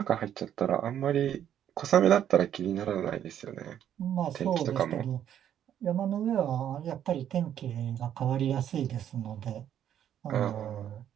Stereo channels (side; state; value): left; quieter; 10.2 dB